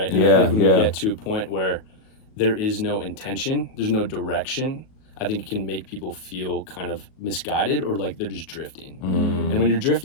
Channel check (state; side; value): late; right; 37 ms